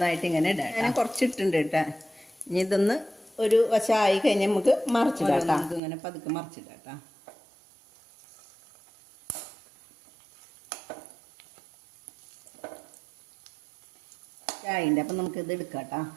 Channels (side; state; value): left; drops out; at 5.8 s